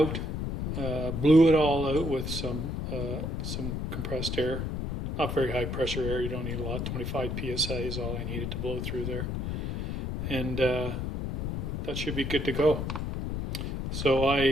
Blew it all out with some compressed air. Not very high pressure air. You don't need a lot. 25 psi is all I needed to blow through there. And that should be good to go. So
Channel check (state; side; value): noise; left; rumble, 3 dB below the sound